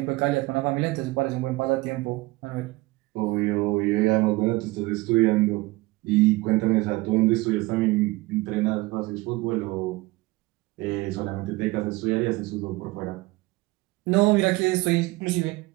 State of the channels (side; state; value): left; quieter; 21.6 dB